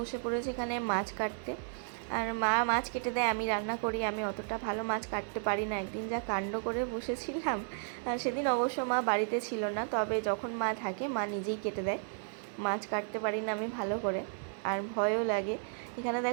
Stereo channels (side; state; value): left; silent; digital silence